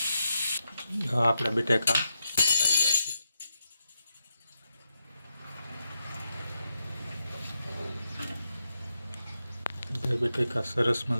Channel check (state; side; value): inverted; both; correlation -0.85